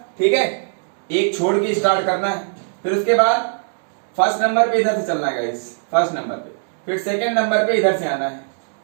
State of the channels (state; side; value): silent; left; digital silence